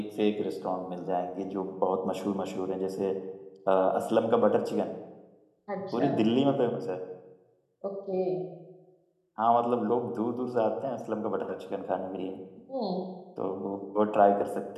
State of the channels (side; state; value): both; identical; correlation 1.00